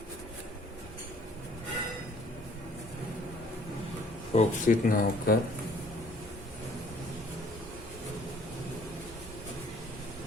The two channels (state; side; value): normal; both; correlation 0.57